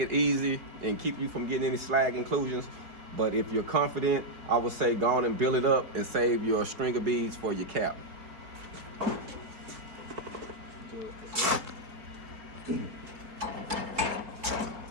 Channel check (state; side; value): late; left; 4.5 ms